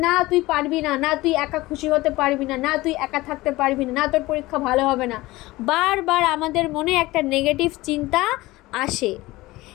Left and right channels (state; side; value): quieter; right; 19.3 dB